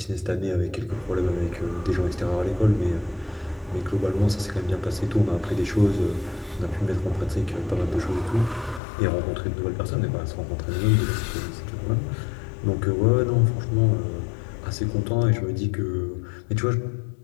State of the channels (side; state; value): right; drops out; at 8.8 s